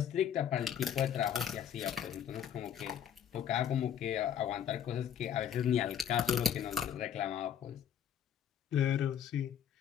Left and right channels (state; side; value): quieter; right; 9.1 dB